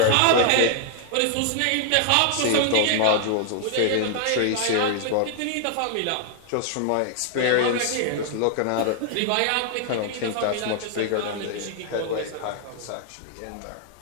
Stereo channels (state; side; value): different; both; correlation -0.01